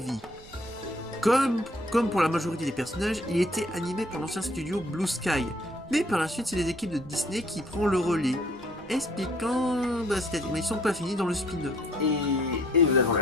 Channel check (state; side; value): noise; right; rumble, 21 dB below the sound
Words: Comme pour la majorité des personnages, il était animé par l'ancien studio Blue Sky, mais par la suite c'est les équipes de Disney qui prennent le relais, expliquant c'est-à-dire mais ils sont pas finis dans le spin-off. Et nous avons